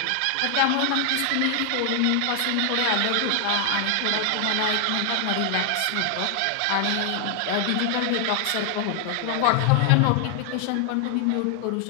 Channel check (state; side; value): different; both; correlation 0.00